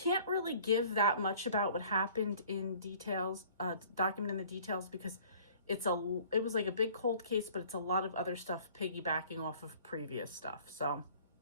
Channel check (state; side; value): inverted; both; correlation -0.52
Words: really give that much about what happened in details, document in the details, because it was like a big cold case, but it's a lot of other stuff piggybacking off of previous stuff. So,